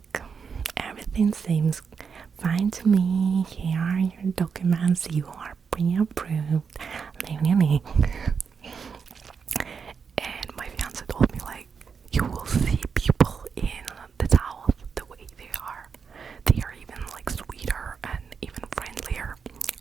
everything seems fine to me. Here are your documents. You are pre-approved. And my fiance told me, like, you will see people in the South the way they are. They are even like sweeter and even friendlier.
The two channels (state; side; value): quieter; left; 6.0 dB